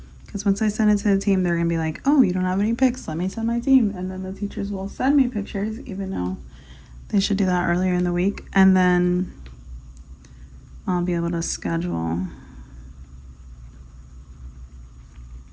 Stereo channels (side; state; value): both; identical; correlation 1.00